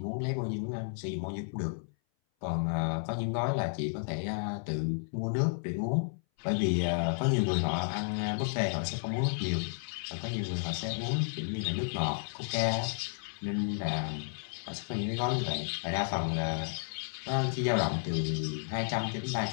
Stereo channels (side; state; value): right; silent; 56 dB below the other